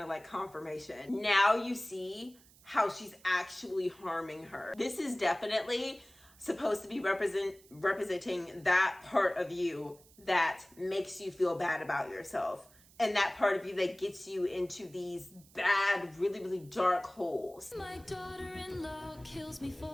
like confirmation. Now you see how she's actually harming her. This is definitely supposed to be representing that part of you that makes you feel bad about yourself. And that part of you that gets you into these bad, really, really dark holes. My daughter-in-law kills me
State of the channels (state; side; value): noise; right; hiss, 26 dB below the sound